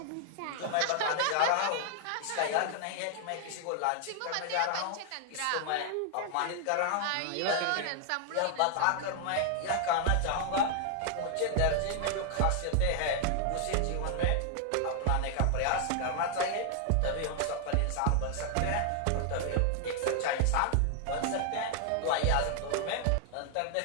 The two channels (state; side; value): different; both; correlation 0.00